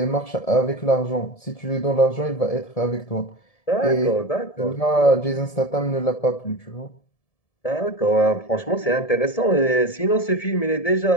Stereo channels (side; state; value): right; late; 1.7 ms